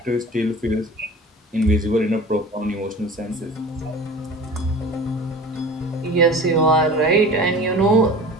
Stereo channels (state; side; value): normal; both; correlation 0.38